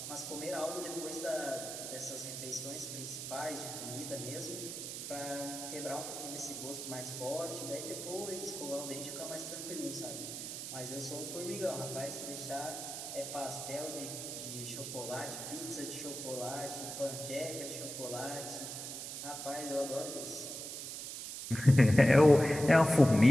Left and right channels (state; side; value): noise; right; hiss, 7 dB below the sound